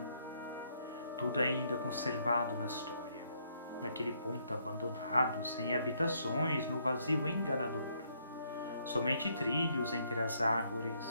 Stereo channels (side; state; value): both; inverted; correlation -0.70